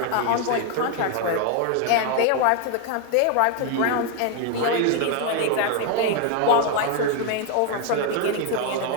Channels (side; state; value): both; different; correlation 0.01